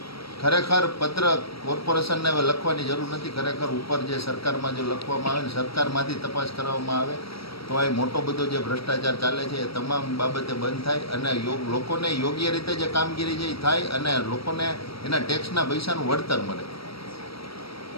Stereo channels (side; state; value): right; late; 0.75 ms